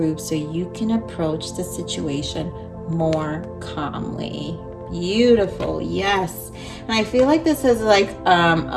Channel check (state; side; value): identical; both; correlation 1.00